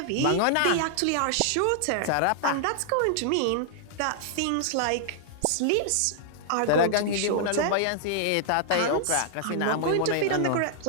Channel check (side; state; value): both; different; correlation -0.01